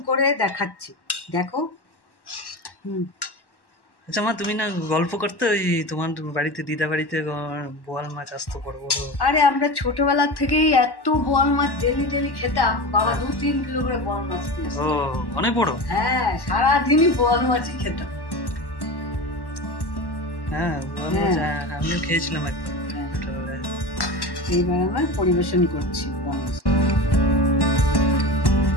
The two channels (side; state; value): right; late; 1.1 ms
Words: করে দেখাচ্ছি, দেখো। আচ্ছা মা, তুমি না গল্প করতে ওই তোমার বাড়িতে, দিদা বাড়িতে বোয়াল মাছ আসতো বড় বড়। আরে আমরা ছোটবেলা থেকেই এত বোয়াল মাছ ডেলি খেতাম। বাবা 2-3 কিলো করে বোয়াল মাছ দিয়ে আসতো। অনেক বড়। হ্যাঁ, সারাদিনই বোয়াল মাছই খেতাম। হ্যাঁ, আমিও খেয়েছিলাম একবার। এইবার আমার পরিবেশন করছি।